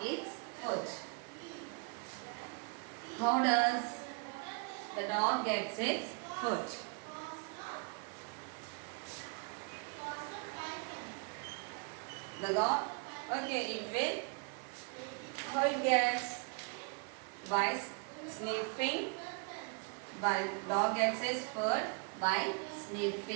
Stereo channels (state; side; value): quieter; left; 35.0 dB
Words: food? How does the dog gets its food? The dog, okay, it will, how it gets? By sniffing. By dog gets its food by